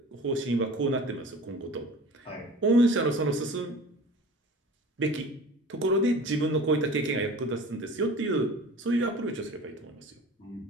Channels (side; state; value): both; normal; correlation 0.40